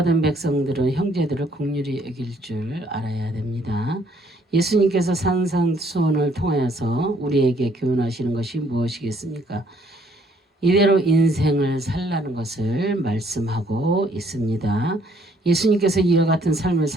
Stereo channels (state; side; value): normal; both; correlation 0.65